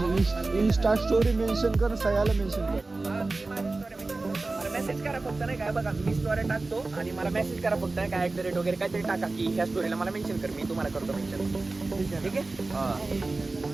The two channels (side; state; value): left; quieter; 3.4 dB